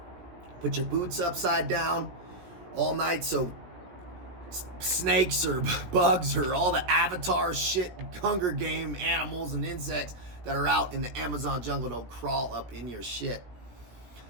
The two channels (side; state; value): left; late; 17 ms